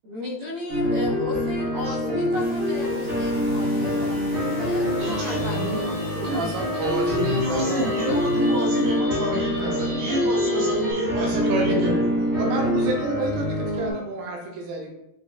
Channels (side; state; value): left; late; 18 ms